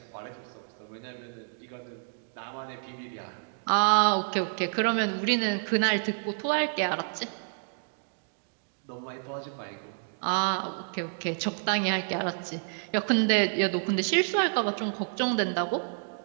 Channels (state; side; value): silent; left; digital silence